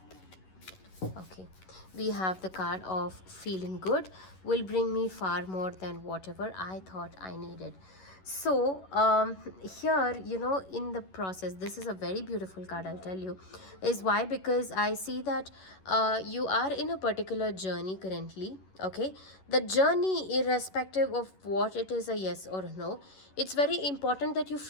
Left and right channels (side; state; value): right; late; 11 ms